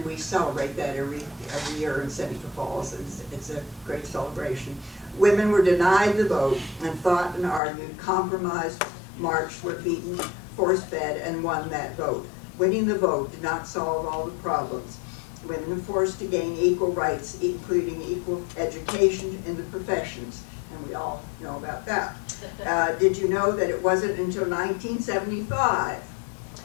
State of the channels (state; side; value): drops out; right; at 7.6 s